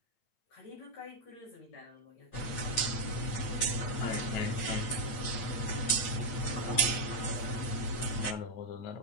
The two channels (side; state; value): right; late; 8.7 ms